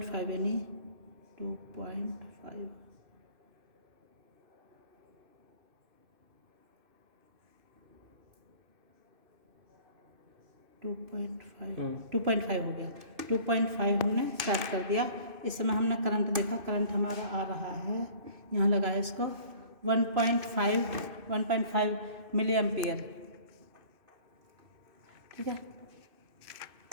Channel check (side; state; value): left; late; 2.6 ms